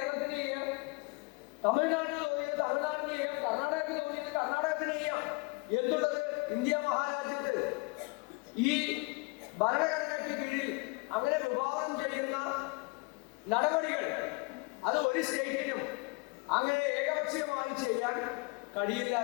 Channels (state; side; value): quieter; right; 28.3 dB